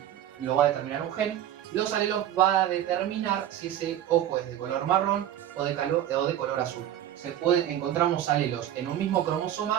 lo va a determinar un gen. Los alelos van a determinar si ese ojo es de color marrón o de color azul. Encontramos alelos en un mismo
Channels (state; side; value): quieter; left; 11.4 dB